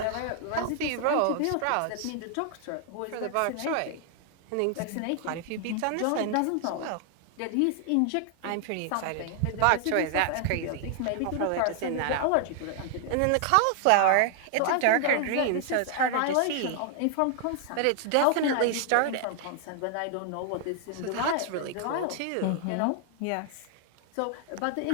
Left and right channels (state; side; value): different; both; correlation 0.00